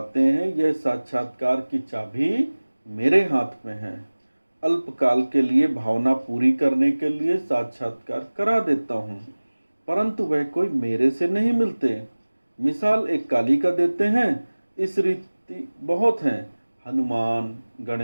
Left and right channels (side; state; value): both; inverted; correlation -1.00